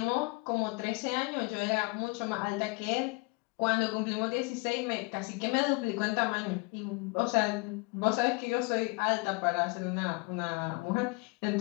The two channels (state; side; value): quieter; right; 27.7 dB